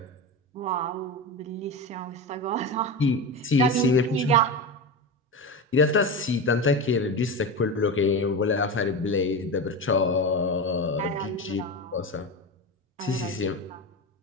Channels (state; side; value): normal; both; correlation 0.21